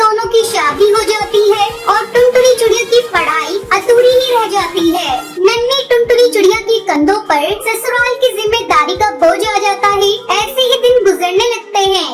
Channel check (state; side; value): identical; both; correlation 1.00